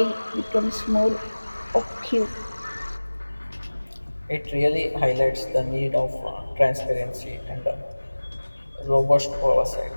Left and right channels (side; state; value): both; inverted; correlation -1.00